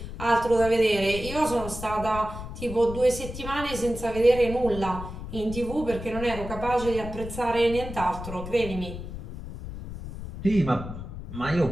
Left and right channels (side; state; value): left; noise; rumble, 10 dB below the sound